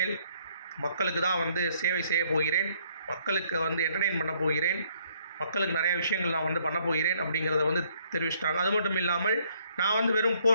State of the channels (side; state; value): both; inverted; correlation -0.66